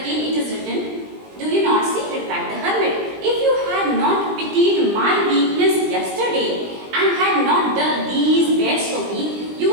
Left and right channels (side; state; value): left; late; 20 ms